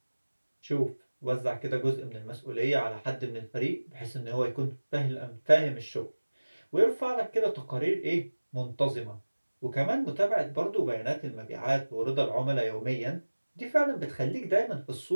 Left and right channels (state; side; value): inverted; both; correlation -1.00